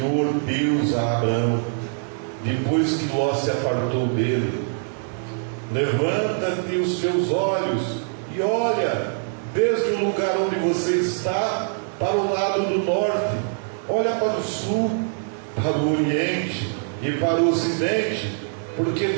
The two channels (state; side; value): silent; left; digital silence